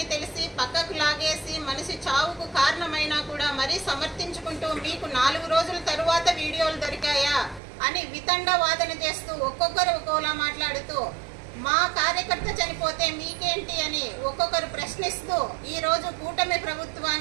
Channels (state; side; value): drops out; left; at 7.6 s